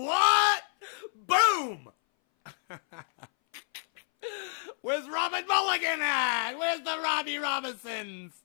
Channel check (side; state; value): right; silent; 58 dB below the other